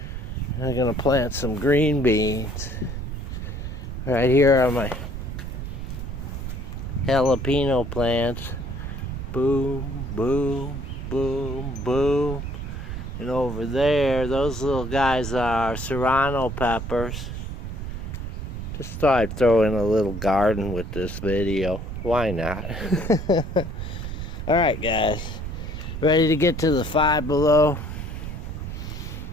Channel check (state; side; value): noise; right; rumble, 6 dB below the sound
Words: I'm gonna plant some green beans. Right here are my jalapeno plants. Boom, boom, boom, boom. And over there, those little guys are serrano peppers. Just thought I'd throw in a little garden with this video. Why not? Alright guys, ready to get to the Five Below?